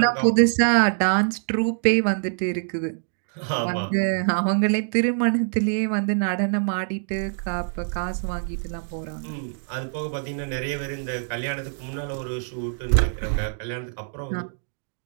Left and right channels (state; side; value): silent; left; digital silence